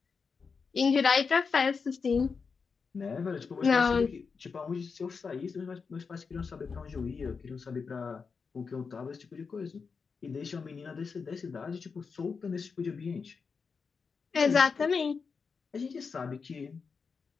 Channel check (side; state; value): right; quieter; 5.3 dB